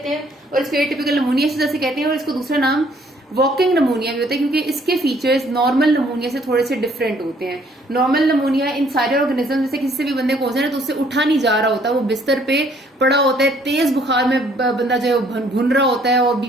हैं, और इसको एटिपिकल नमूनिया से जैसे कहते हैं, और इसको दूसरा नाम वॉकिंग नमूनिया भी होता है, क्योंकि इसके फीचर्स नॉर्मल नमूनिया से थोड़े से डिफरेंट होते हैं। नॉर्मल नमूनिया इन सारे ऑर्गेनिज्म जैसे किसी से भी बंदे को हो जाए ना तो उससे उठा नहीं जा रहा होता, वो बिस्तर पे पड़ा होता है, तेज बुखार में बंदा जो है भुन रहा होता है और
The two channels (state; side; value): normal; both; correlation 0.63